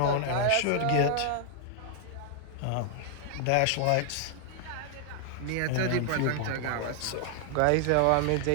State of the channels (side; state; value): both; different; correlation 0.00